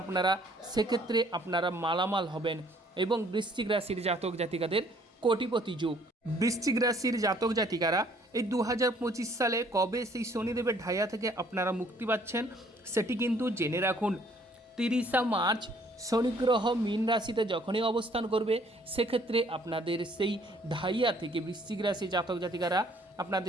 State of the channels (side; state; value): both; normal; correlation 0.61